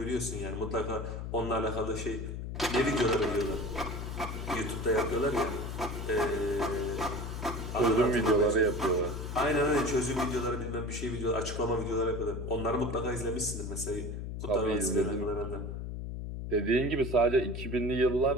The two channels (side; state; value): left; noise; hum, 6 dB below the sound